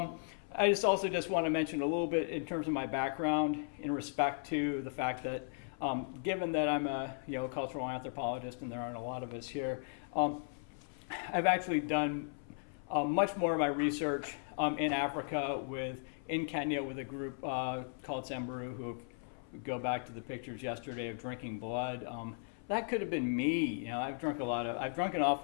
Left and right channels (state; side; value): silent; right; 53 dB below the other